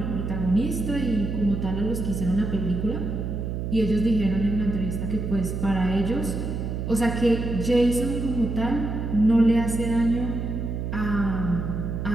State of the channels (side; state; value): right; noise; hum, 3 dB below the sound